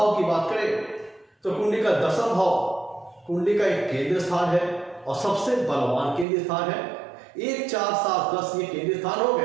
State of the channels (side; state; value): left; drops out; at 6.2 s